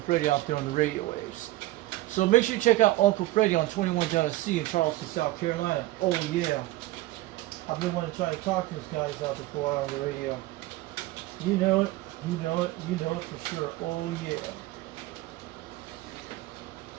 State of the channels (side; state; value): left; quieter; 17.6 dB